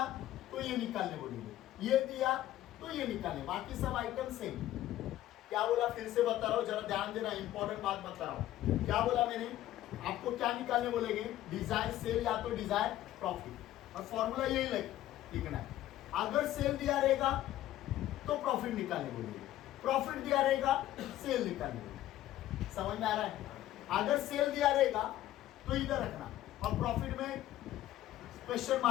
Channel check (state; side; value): quieter; right; 13.8 dB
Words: तो ये निकालने बोलेंगे, ये दिया तो ये निकालने, बाकी सब आइटम सेम। क्या बोला फिर से बता रहा हूं, जरा ध्यान देना, इंपॉर्टेंट बात बता रहा हूं। क्या बोला मैंने? आपको क्या निकालने बोलेंगे? डिजायर सेल या तो डिजायर प्रॉफिट, और फॉर्मूला यही लिखना है। अगर सेल दिया रहेगा तो प्रॉफिट निकालने बोलेंगे, प्रॉफिट दिया रहेगा सेल निकालने बोलेंगे। समझ में आ रहा है? अगर सेल दिया रहेगा तो इधर रखना, और प्रॉफिट में क्वेश्चन